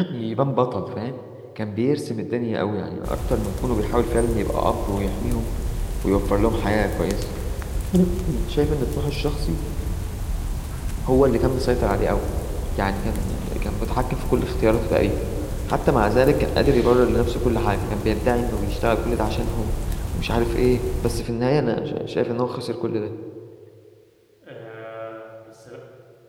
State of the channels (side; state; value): both; identical; correlation 1.00